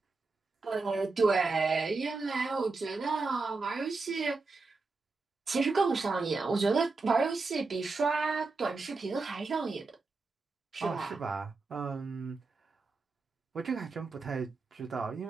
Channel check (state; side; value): quieter; left; 3.9 dB